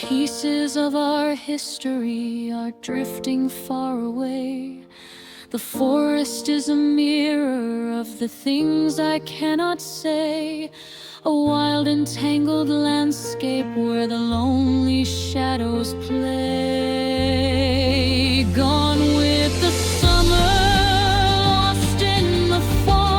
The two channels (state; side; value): identical; both; correlation 1.00